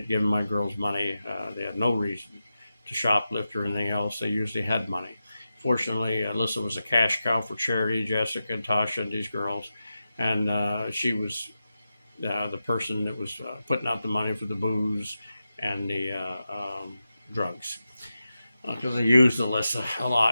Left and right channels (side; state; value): both; inverted; correlation -0.91